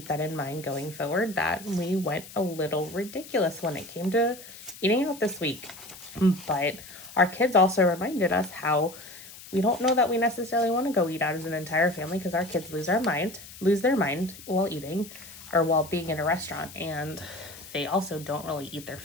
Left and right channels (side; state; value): left; noise; hiss, 16 dB below the sound